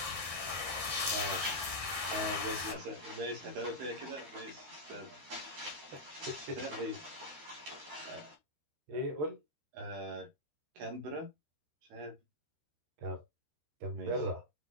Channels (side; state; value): left; late; 13 ms